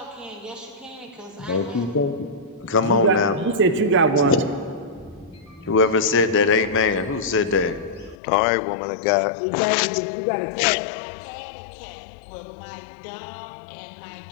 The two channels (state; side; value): drops out; right; at 8.2 s